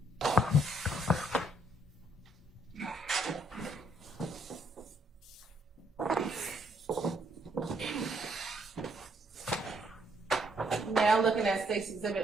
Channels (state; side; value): normal; both; correlation 0.71